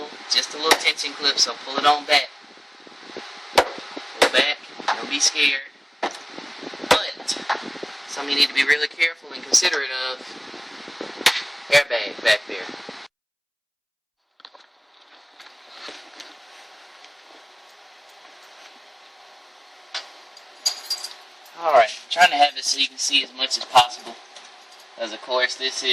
just a little tension clip, so pull it on back. Pull back, don't be scared. But, something you need to be really careful and considerate of, airbag back there. Alright, I'm trying to have it so you can see as much as possible. Because of course this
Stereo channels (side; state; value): both; identical; correlation 1.00